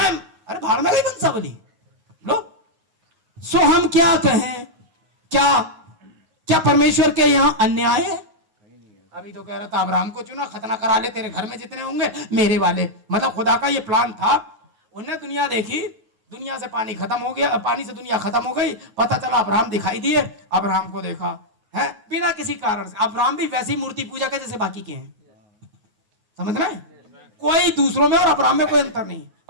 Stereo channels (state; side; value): late; left; 9.4 ms